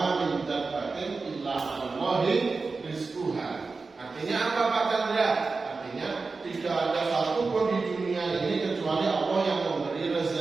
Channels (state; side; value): quieter; left; 4.1 dB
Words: min dabbatin illa 'alallahi rizquha. Artinya apa Pak Chandra? Artinya tidak ada satu pun di dunia ini kecuali Allah yang memberi